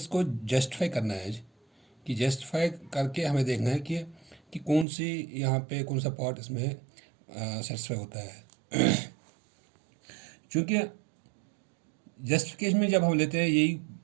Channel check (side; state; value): left; drops out; at 4.9 s